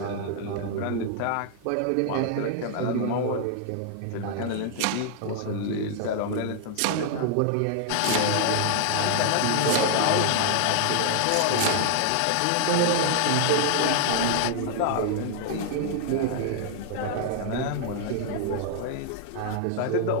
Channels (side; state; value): both; different; correlation -0.01